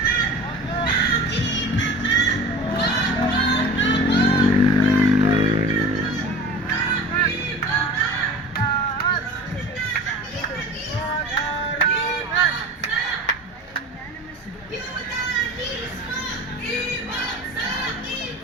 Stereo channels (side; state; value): both; normal; correlation 0.37